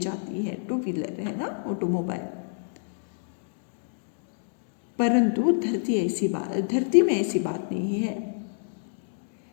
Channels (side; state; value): right; silent; digital silence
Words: है। 2 व्हीलर है ना, ऑटोमोबाइल। परंतु धरती में ऐसी बात नहीं है।